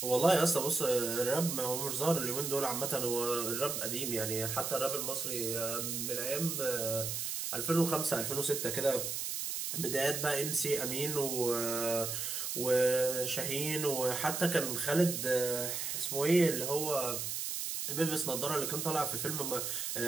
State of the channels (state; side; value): noise; right; hiss, 3 dB below the sound